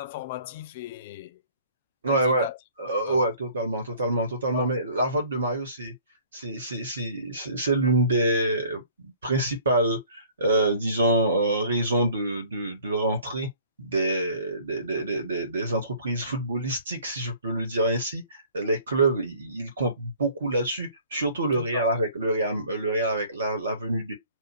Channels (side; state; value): both; inverted; correlation -0.53